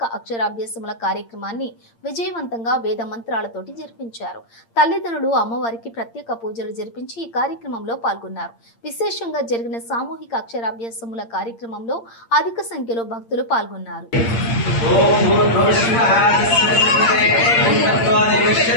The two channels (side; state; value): right; late; 8.7 ms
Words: అక్షరాభ్యాసముల కార్యక్రమాన్ని విజయవంతంగా వేద మంత్రాలతోటి జరిపించారు. తల్లిదండ్రులు అమ్మవారికి ప్రత్యేక పూజలు జరిపించి ఈ కార్యక్రమంలో పాల్గొన్నారు. విశేషంగా జరిగిన సామూహిక అక్షరాభ్యాసముల కార్యక్రమంలో అధిక సంఖ్యలో భక్తులు పాల్గొన్నారు.